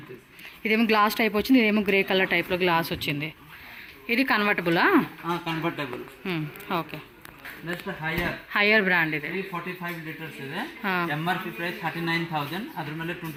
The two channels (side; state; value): both; identical; correlation 1.00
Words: ఇదేమో గ్లాస్ టైప్ వచ్చింది, ఇదేమో గ్రే కలర్ టైప్ లో గ్లాస్ వచ్చింది. ఇది కన్వర్టబులా? Convertible. Okay, next Haier brand ఇది. 345 లీటర్స్ ಇದೆ. MRP price 39,000. అದ್ರ ಮೇಲೆ